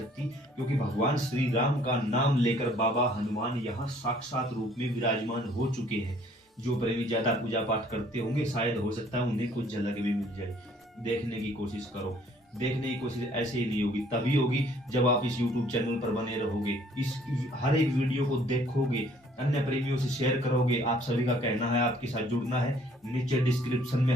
क्योंकि भगवान श्री राम का नाम लेकर बाबा हनुमान यहाँ साक्षात रूप में विराजमान हो चुके हैं। जो प्रेमी ज्यादा पूजा पाठ करते होंगे शायद हो सकता है उन्हें कुछ झलक भी मिल जाए। देखने की कोशिश करो। देखने की कोशिश ऐसे ही नहीं होगी, तभी होगी जब आप इस YouTube चैनल पर बने रहोगे, इस हर एक वीडियो को देखोगे, अन्य प्रेमियों से शेयर करोगे। आप सभी का कहना है आपके साथ जुड़ना है, नीचे डिस्क्रिप्शन में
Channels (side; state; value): both; normal; correlation 0.59